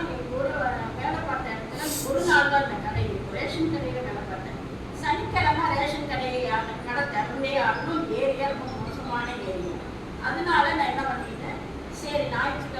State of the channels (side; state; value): both; identical; correlation 1.00